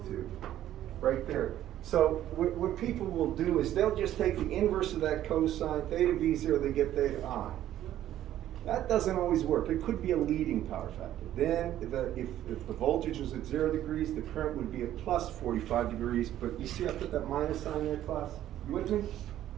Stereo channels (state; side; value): quieter; left; 12.4 dB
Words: right there. So what people will do is they'll just take the inverse of that cosine, theta v 0, they get theta I. That doesn't always work. It could be a leading power factor. Then if the voltage was at 0 degrees, the current would be at plus 45 degrees. But you see I put that minus sign there, class? You with me?